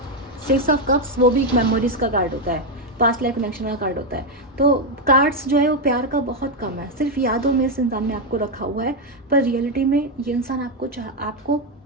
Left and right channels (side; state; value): both; normal; correlation 0.04